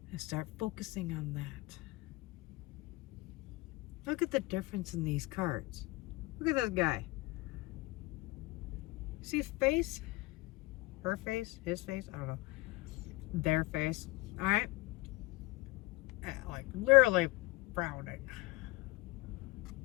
and start focusing on that. Look at the difference in these cards. Look at this guy. See his face? Her face? His face? I don't know. Their face. Alright? Like literally frowning.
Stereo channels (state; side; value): quieter; right; 21.9 dB